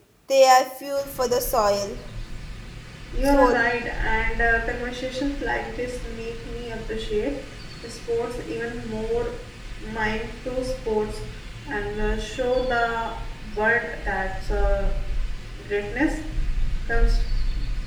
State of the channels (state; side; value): identical; both; correlation 1.00